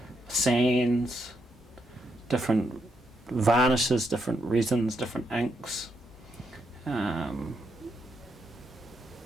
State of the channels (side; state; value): both; normal; correlation 0.79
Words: sands, different varnishes, different resins, different inks. I'm